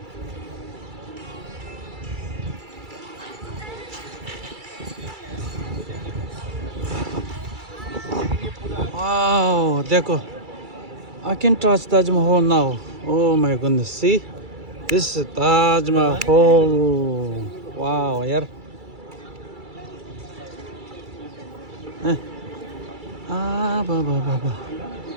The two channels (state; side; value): late; left; 2.3 ms